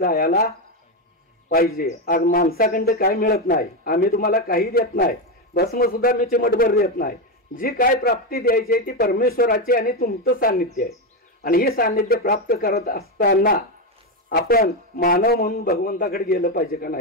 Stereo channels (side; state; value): both; normal; correlation 0.09